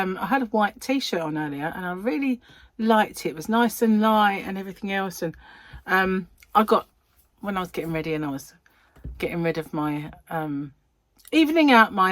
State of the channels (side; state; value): both; identical; correlation 1.00